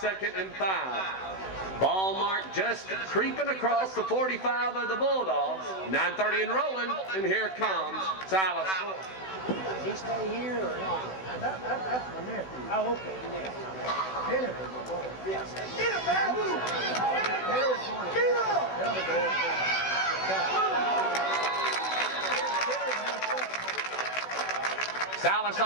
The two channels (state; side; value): late; right; 16 ms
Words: and 5. Ball mark just creeping across the 45 of the Bulldogs. 9:30 and rolling, and here comes Silas. He stay here or not? That's my nephew. Oh, okay. Jennifer, my boy. Yes. Get him, man! Terry's going to get up! The other boy's going to Silas